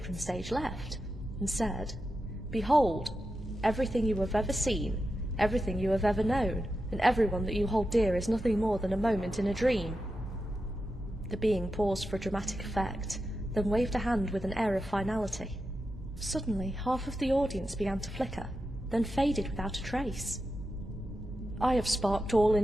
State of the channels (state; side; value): normal; both; correlation 0.90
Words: from stage left, and said, "Behold, everything you have ever seen, everything you have ever known, and everyone that you hold dear is nothing more than a moment in a dream." The being paused for dramatic effect, then waved a hand with an air of finality. Suddenly, half of the audience began to flicker, then faded without a trace. I have sparked all